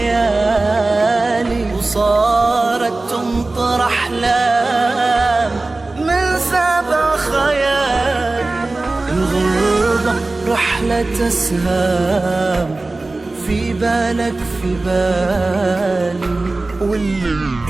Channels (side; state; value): left; quieter; 3.2 dB